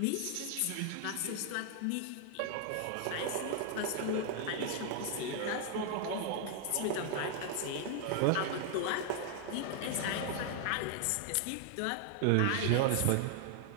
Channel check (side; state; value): both; different; correlation 0.00